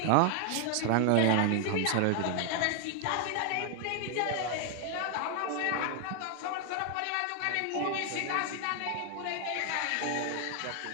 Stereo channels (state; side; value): different; both; correlation 0.00